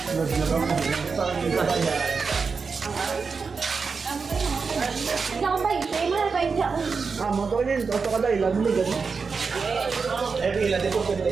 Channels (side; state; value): left; quieter; 5.0 dB